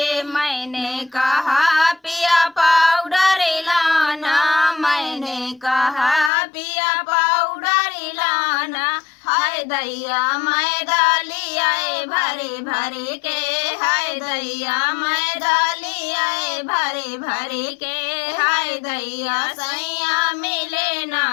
मैंने कहा पिया पाउडर लाना, मैंने कहा पिया पाउडर लाना। हाय दैया मैदा लियाए भरे भरे के, हाय दैया मैदा लियाए भरे भरे के। हाय दैया सैया मिले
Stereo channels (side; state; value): right; drops out; at 6.3 s